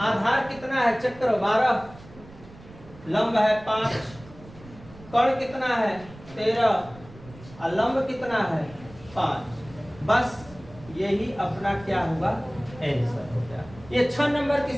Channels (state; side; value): noise; right; rumble, 20 dB below the sound